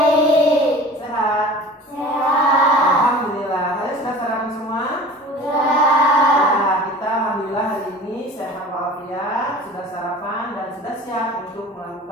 Sehat? Sehat. Alhamdulillah. Kalian sudah sarapan semua? Sudah. Nah, kita alhamdulillah hari ini sehat walafiat, sudah sarapan dan sudah siap untuk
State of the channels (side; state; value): both; normal; correlation 0.40